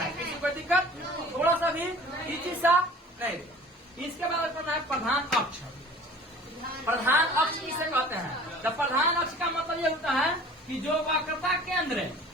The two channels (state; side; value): normal; both; correlation 0.45